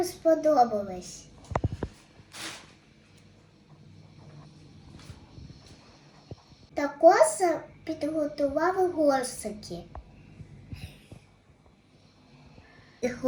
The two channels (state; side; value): identical; both; correlation 1.00